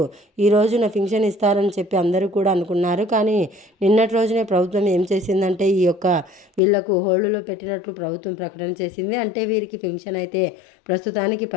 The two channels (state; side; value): drops out; right; at 6.6 s